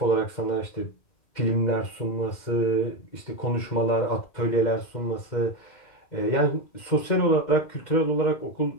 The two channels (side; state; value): right; late; 2.1 ms